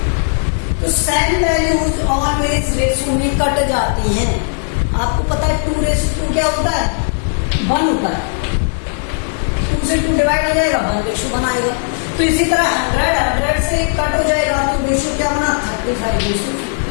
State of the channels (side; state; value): right; silent; 69 dB below the other